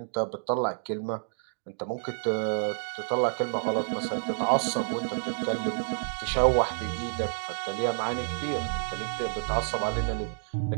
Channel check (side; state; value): left; silent; digital silence